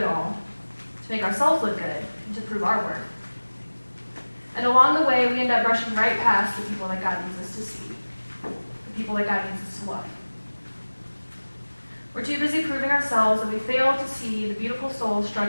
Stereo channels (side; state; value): both; inverted; correlation -1.00